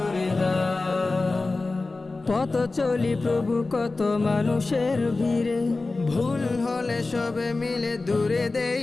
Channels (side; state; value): right; quieter; 3.5 dB